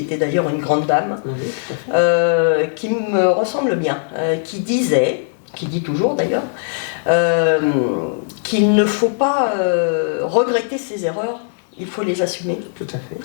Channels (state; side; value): silent; right; digital silence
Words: d'ailleurs une grande dame, qui me ressemble bien, qui dit toujours d'ailleurs, qu'il ne faut pas regretter ses erreurs, il faut les assumer. Tout à fait.